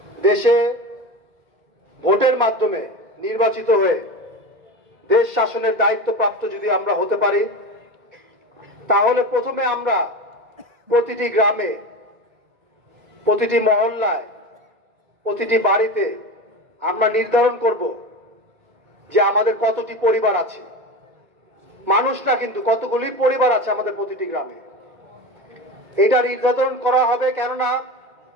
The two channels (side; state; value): left; late; 2.2 ms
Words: দেশে ভোটের মাধ্যমে নির্বাচিত হয়ে দেশ শাসনের দায়িত্বপ্রাপ্ত যদি আমরা হতে পারি, তাহলে প্রথমে আমরা প্রতিটি গ্রামে, প্রতিটি মহল্লায়, প্রতিটি বাড়িতে আমরা নির্ধারণ করব যে আমাদের কতটি পরিবার আছে। মানুষ না, কিন্তু কতগুলি পরিবার আছে আমাদের প্রতিটি গ্রামে, এটা নির্ধারণ করা হবে। কেননা